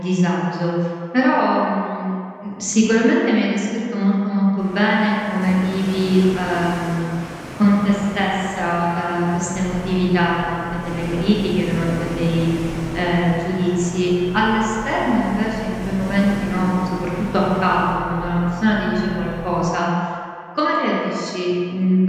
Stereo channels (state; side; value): identical; both; correlation 1.00